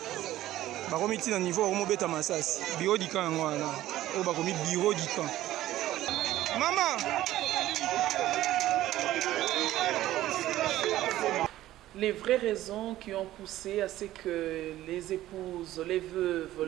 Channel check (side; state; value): left; quieter; 14.6 dB